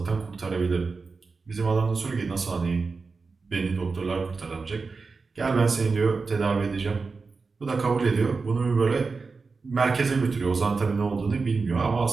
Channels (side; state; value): left; quieter; 4.4 dB